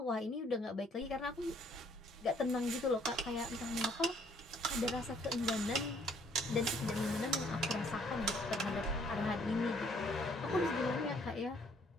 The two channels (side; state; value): both; normal; correlation 0.63